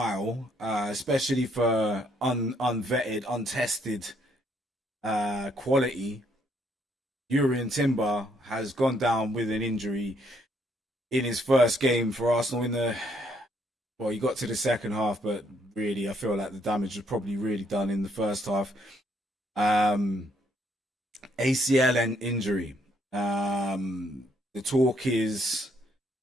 especially for unvetted, untested quality. Urian Timber has gone down with an injury in his first game for Arsenal. He got to the second half, but really, I feel like the damage was probably really done in the first half. ACL and injury. The talk is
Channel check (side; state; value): both; normal; correlation 0.70